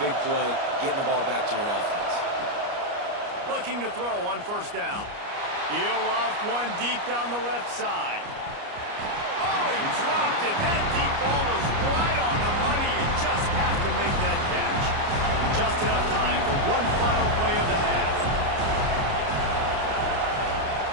big play, getting the ball back to your offense. Looking to throw on first down. He'll off one deep down the left side. Oh, he dropped it. That deep ball was right on the money. You just have to make that catch. Just enough time for one final play of the half.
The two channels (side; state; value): left; late; 29 ms